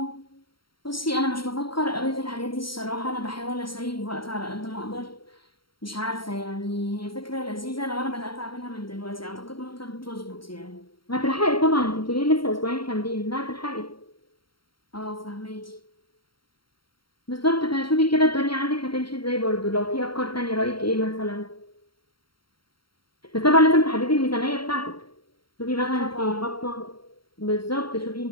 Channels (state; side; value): late; right; 0.73 ms